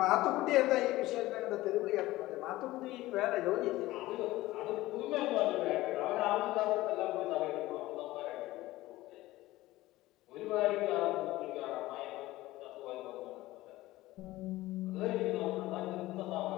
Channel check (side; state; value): right; quieter; 17.5 dB